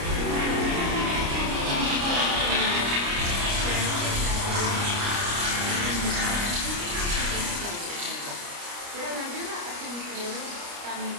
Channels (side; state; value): left; late; 29 ms